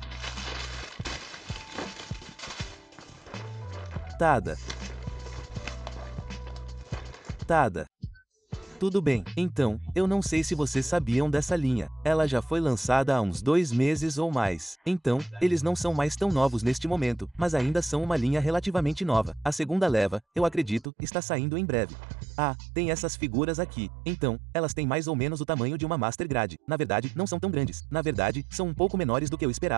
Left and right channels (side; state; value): left; drops out; at 20.9 s